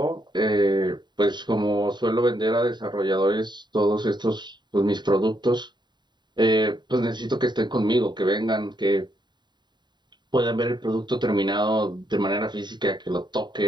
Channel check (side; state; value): left; late; 0.21 ms